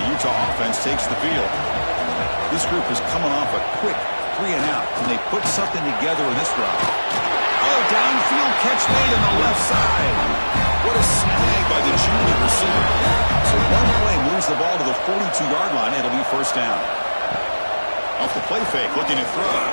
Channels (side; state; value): both; inverted; correlation -1.00